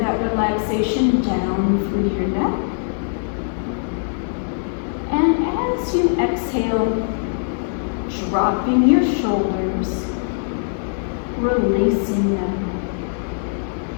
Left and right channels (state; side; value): silent; right; digital silence